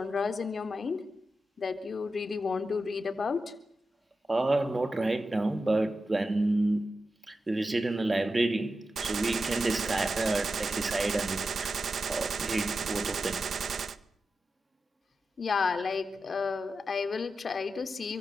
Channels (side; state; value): both; normal; correlation 0.90